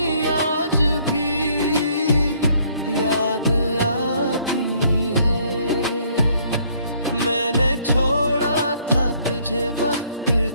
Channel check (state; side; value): inverted; both; correlation -0.64